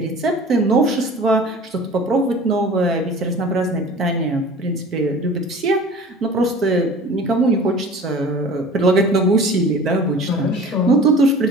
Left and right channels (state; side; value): normal; both; correlation 0.43